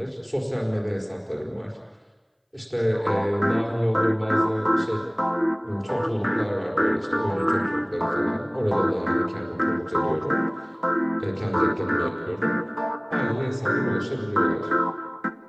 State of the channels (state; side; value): identical; both; correlation 1.00